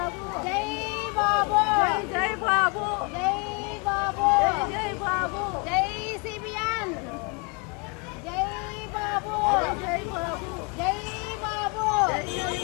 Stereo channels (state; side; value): quieter; right; 31.8 dB